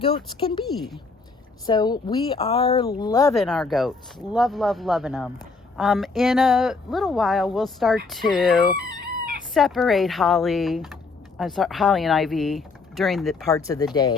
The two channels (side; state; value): right; quieter; 4.1 dB